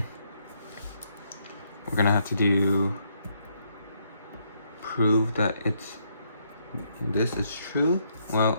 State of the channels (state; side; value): inverted; both; correlation -0.74